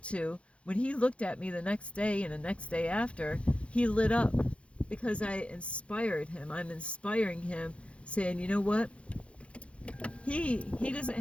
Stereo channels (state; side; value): late; right; 0.061 ms